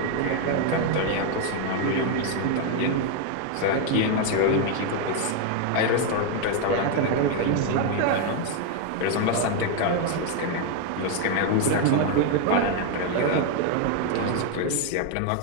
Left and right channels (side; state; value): both; different; correlation 0.01